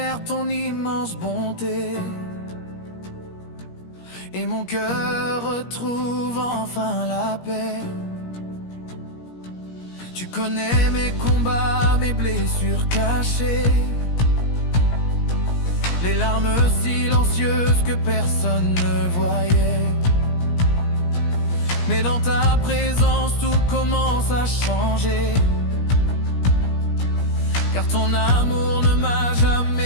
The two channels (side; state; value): right; late; 17 ms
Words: ton immense bonté, et mon cœur retrouve enfin la paix. Tu connais mes combats, mes blessures cachées, les larmes silencieuses que personne ne voyait. Mais dans ta présence tout commence à changer, car ton amour ne m'a